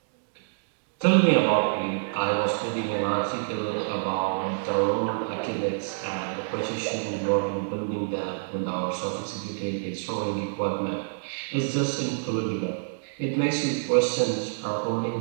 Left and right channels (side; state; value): left; silent; digital silence